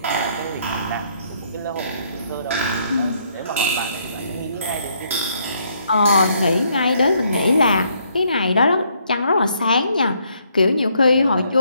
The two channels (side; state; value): both; inverted; correlation -0.70